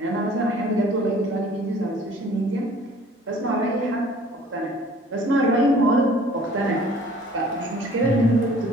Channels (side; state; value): both; normal; correlation 0.52